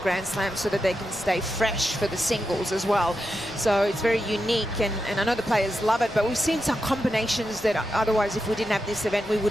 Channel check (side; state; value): left; noise; rumble, 20 dB below the sound